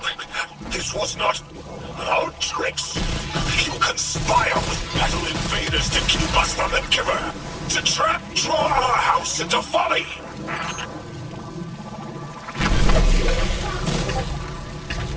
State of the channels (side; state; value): both; identical; correlation 1.00